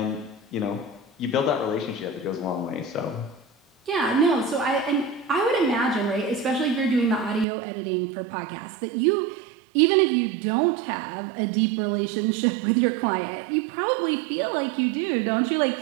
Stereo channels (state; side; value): drops out; left; at 7.5 s